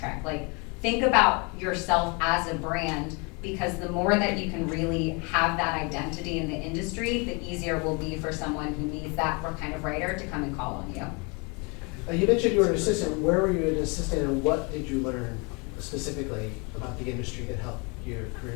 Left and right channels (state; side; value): quieter; right; 31.1 dB